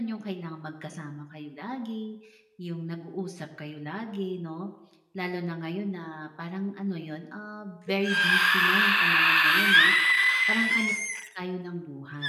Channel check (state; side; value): identical; both; correlation 1.00